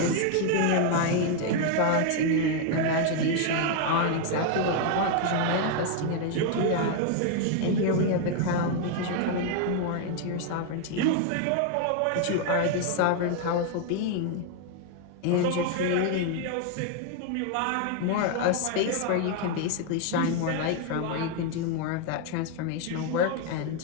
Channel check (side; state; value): both; different; correlation 0.00